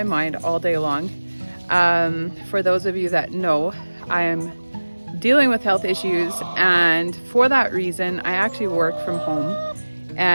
mind all day long. For those of you that know, I am dealing with health issues, and for that reason I actually work from home.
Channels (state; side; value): inverted; both; correlation -1.00